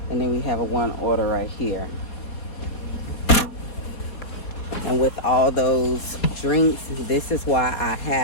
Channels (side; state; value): right; late; 4.2 ms